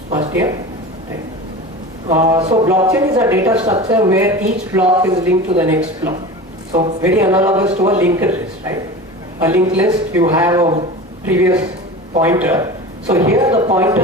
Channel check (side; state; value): both; normal; correlation 0.33